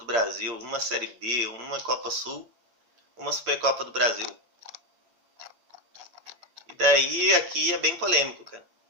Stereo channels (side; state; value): left; late; 8.7 ms